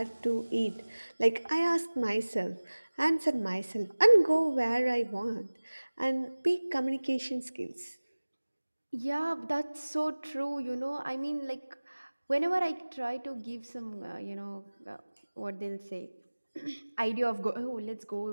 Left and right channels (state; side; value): inverted; both; correlation -1.00